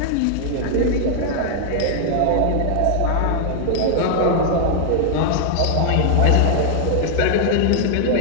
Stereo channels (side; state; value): both; different; correlation 0.00